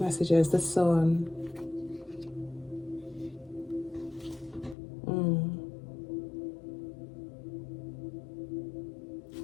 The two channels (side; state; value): right; drops out; at 4.8 s